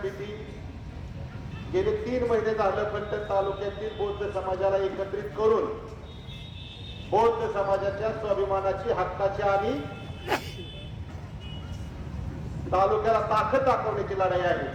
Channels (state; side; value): identical; both; correlation 1.00